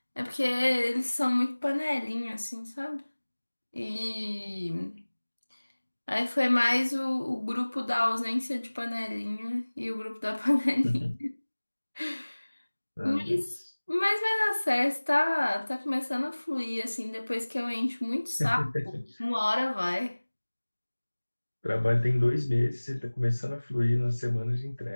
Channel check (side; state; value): both; inverted; correlation -1.00